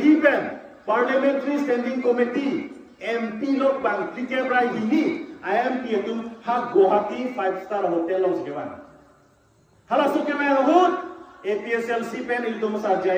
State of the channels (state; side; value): identical; both; correlation 1.00